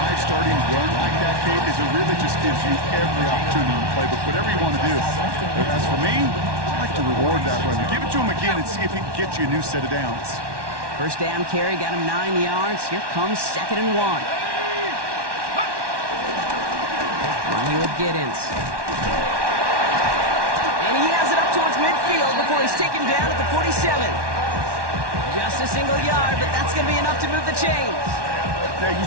starting run like that, Kate, is it really just gives you every opportunity in the playbook, whatever you want to do. But as for me, I like to reward that run. Give it to him again and see if he can get you a new set of downs. 1st down carry, got him 9 yards. Here comes 2nd and 1. One here with Giddens. And he has it up towards midfield before he's taken down at the 47. Just a single yard, but that's going to be enough to move the chains. Now,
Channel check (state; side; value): late; left; 1.1 ms